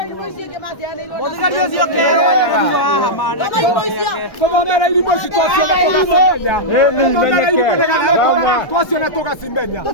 Mũthigari ũcio kero wa hamana kũthomera irimũ ici twaciona tũgacimenya kũthomera irimũ nĩgetha twaciona tũgacimenya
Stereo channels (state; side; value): late; right; 1.4 ms